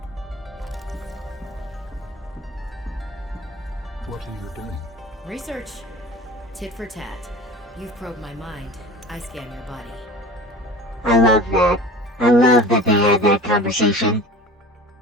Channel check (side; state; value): both; normal; correlation 0.39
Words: What are you doing? Research. Tit for tat. You've probed my mind. I scan your body. I love that. I love that they had that conversation.